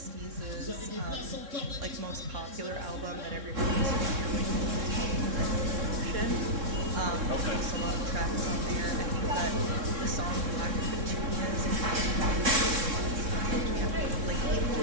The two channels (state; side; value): late; left; 3.6 ms